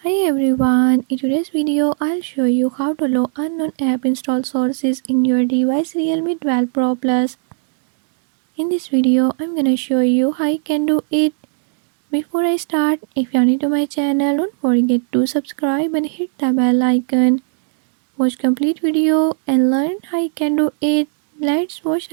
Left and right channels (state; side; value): silent; left; digital silence